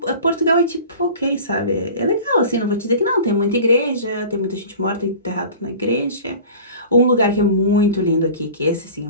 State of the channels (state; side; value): inverted; both; correlation -0.39